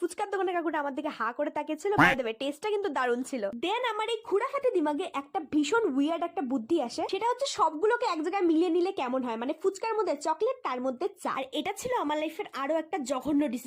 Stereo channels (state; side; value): identical; both; correlation 1.00